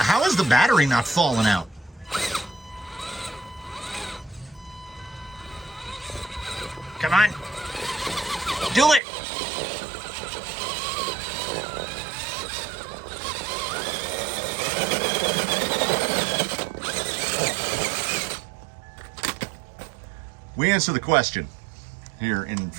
is the battery not falling out? Come on. Do it. We answer the question here in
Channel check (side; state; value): left; drops out; at 9.0 s